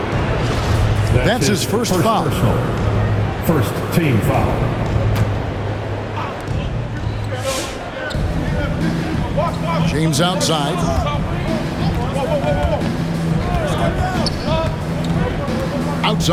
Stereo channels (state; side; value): identical; both; correlation 1.00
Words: That's his first foul. First team foul. James outside.